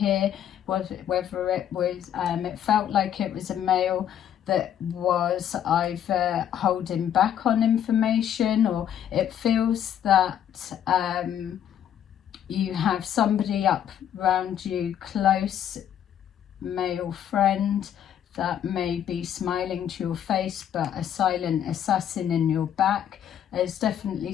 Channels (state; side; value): quieter; right; 9.9 dB